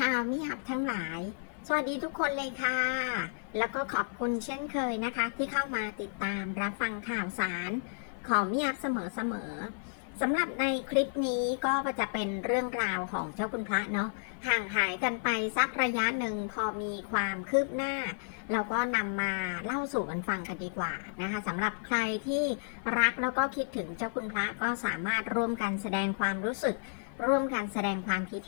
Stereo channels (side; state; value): right; silent; digital silence